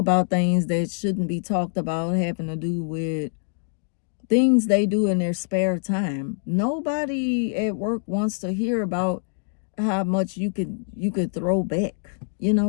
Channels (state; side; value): silent; right; digital silence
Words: things that shouldn't be talked about, having to do with things they do in their spare time. Nobody at work wants to hear about how much you could throw back.